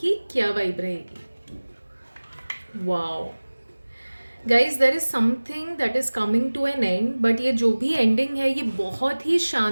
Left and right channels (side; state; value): both; inverted; correlation -1.00